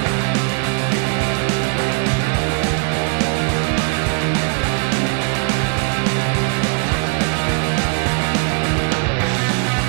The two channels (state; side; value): quieter; left; 39.2 dB